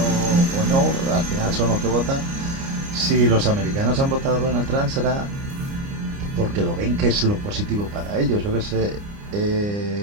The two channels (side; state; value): left; late; 29 ms